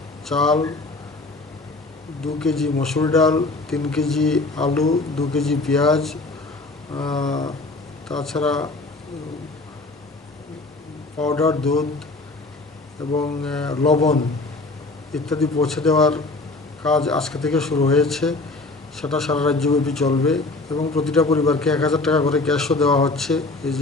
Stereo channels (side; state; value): right; quieter; 3.3 dB